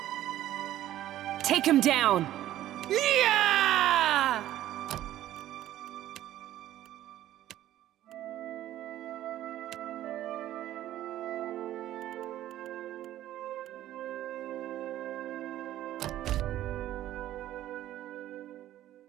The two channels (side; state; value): left; quieter; 13.3 dB